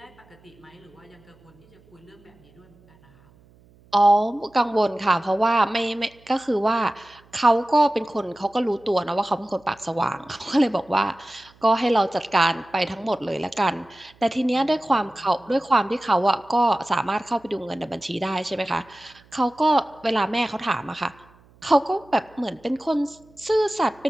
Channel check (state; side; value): noise; right; hum, 29 dB below the sound